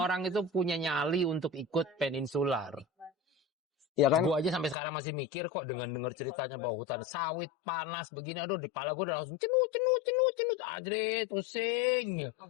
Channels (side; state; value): right; drops out; at 4.8 s